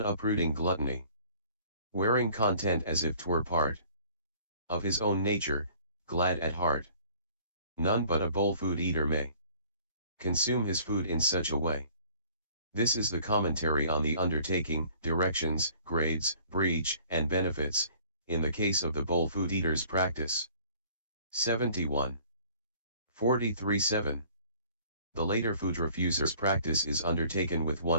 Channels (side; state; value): both; inverted; correlation -0.53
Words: uprooting gluttony. Wearing content as if 'twere part of his own nature, glad at heart. None but a bowl food eater may consume his food in such a way. This is the commentary on the undertaking, directions, grades, breach, and benefits, in the case of the bowl food eater's practice. 71. 43.7. The later food refuser's practice is undertaken with